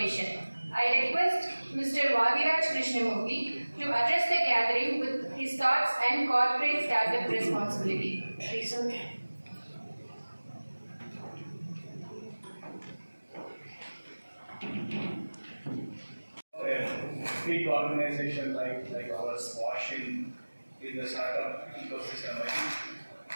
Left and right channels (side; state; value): both; inverted; correlation -1.00